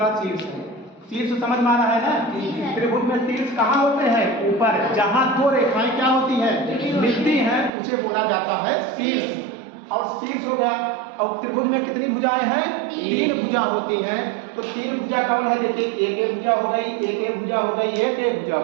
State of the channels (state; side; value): drops out; left; at 7.7 s